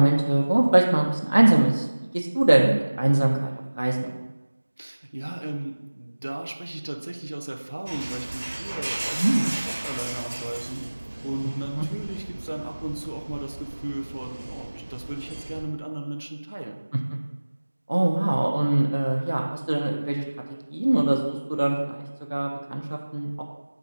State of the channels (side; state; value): both; inverted; correlation -1.00